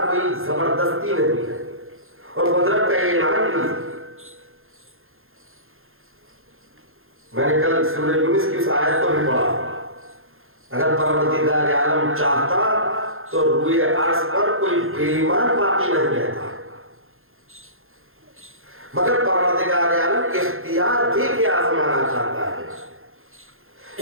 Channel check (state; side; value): late; left; 0.60 ms